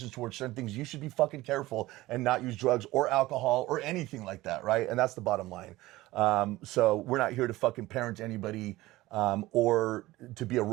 towards certain things, you should be fucking careful and not use drugs or alcohol or anything like that, right? And that's the bottom line. So we're not here to fucking parent anybody or to be a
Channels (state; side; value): quieter; left; 18.2 dB